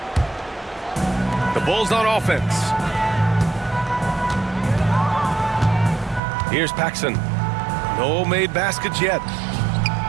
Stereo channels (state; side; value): drops out; left; at 6.2 s